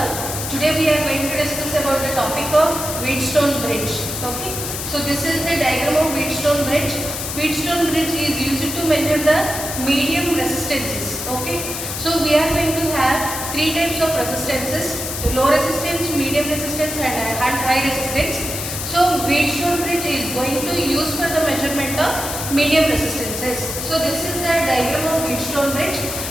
Today we are going to discuss about the topic of Wheatstone bridge. Okay. So this is the diagram of Wheatstone bridge. Wheatstone bridge is used to measure the medium resistances. Okay. So we are going to have three types of resistances: low resistance, medium resistance, and high resistance. So Wheatstone bridge is going to use for the measurement of medium resistances. So this is the diagram of Wheatstone bridge,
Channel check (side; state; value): left; noise; hiss, 5 dB below the sound